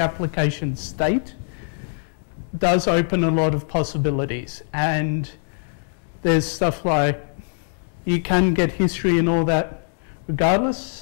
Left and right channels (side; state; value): right; silent; digital silence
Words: application state does open a lot of possibilities. And there's stuff like, you can get history and all that